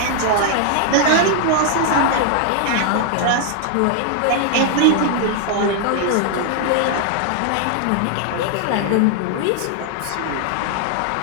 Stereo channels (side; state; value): both; different; correlation 0.00